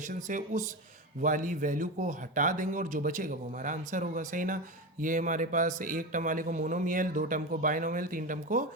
से उस वाली वैल्यू को हटा देंगे और जो बचेगा वो हमारा आंसर होगा, सही ना। ये हमारे पास एक टर्म वाले को मोनोमियल, दो टर्म को बाइनोमियल, तीन टर्म को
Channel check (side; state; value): both; normal; correlation 0.21